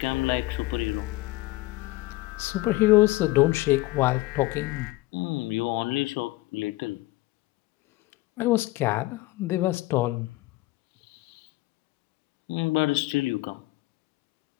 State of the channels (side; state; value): right; quieter; 19.5 dB